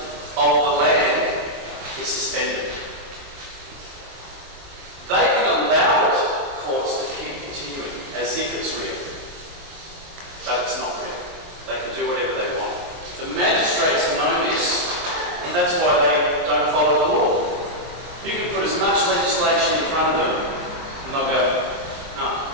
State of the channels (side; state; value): left; late; 23 ms